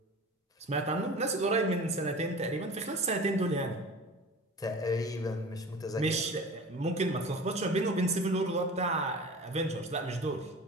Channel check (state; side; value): normal; both; correlation 0.37